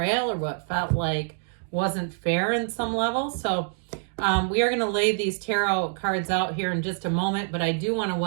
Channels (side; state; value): left; silent; 61 dB below the other